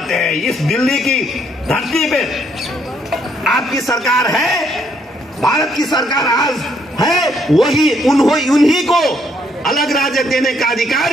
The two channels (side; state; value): both; normal; correlation 0.70